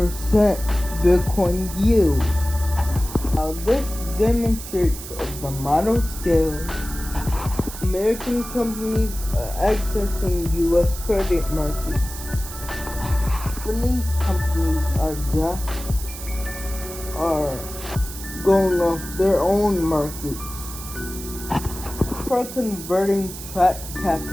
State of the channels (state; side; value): noise; right; hiss, 11 dB below the sound